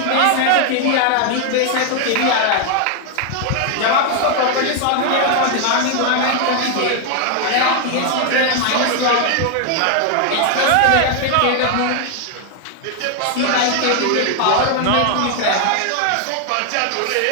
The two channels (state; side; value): different; both; correlation 0.00